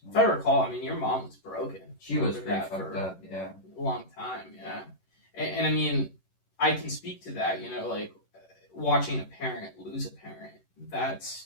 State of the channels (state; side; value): late; right; 11 ms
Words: If I recall, I mean, your mom was broken. She was pretty fucked up, yeah. A long time, yeah. And I mean, I can speak to that, like, watching a parent lose a parent. That's